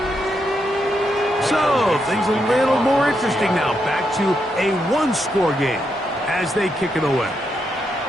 So, things a little more interesting now. Back to a one-score game as they kick it away.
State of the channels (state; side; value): normal; both; correlation 0.81